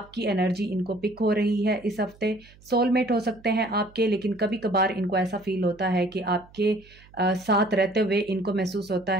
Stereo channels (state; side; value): noise; right; hum, 25 dB below the sound